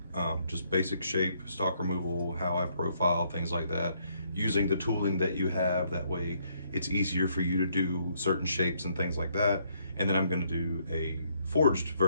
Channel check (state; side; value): inverted; both; correlation -0.70